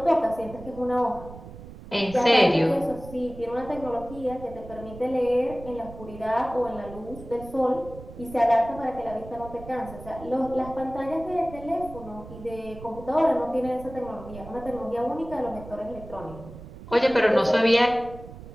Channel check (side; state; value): right; noise; rumble, 15 dB below the sound